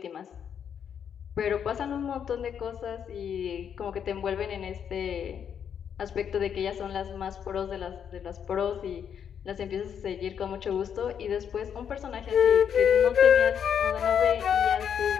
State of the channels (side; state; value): right; quieter; 8.1 dB